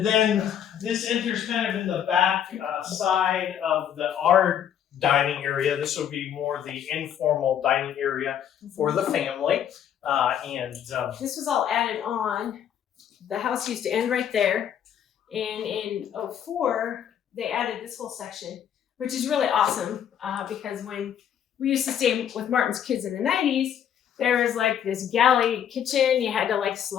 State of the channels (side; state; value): right; quieter; 9.3 dB